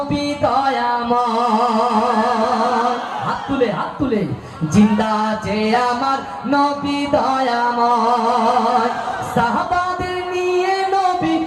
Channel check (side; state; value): both; identical; correlation 1.00